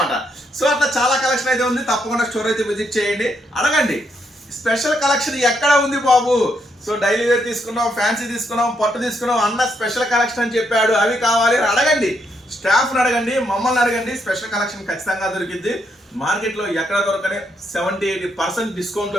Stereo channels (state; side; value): normal; both; correlation 0.77